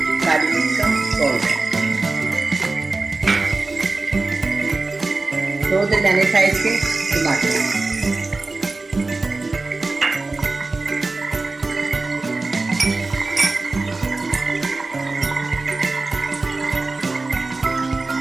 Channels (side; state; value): left; quieter; 3.5 dB